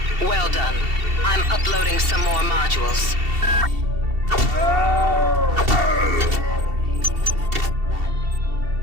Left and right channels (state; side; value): late; left; 2.7 ms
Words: Well done. I'm uploading some more modules.